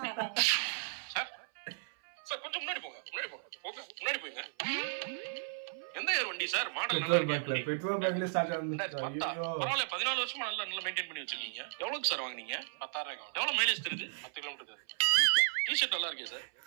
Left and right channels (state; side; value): silent; left; 54 dB below the other